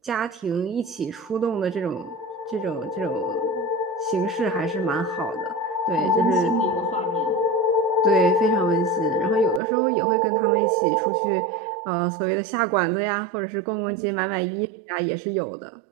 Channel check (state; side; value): drops out; left; at 9.6 s